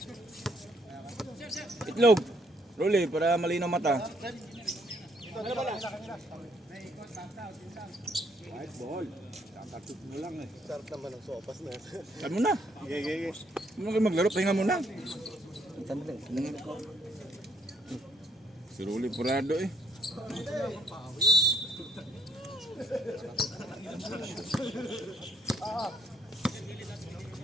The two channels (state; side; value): normal; both; correlation 0.69